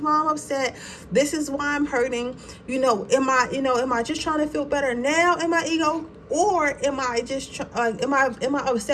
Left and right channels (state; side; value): identical; both; correlation 1.00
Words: why I'm upset. This is why I'm hurting. Am I just trying to feel better now in my ego? Or am I just am I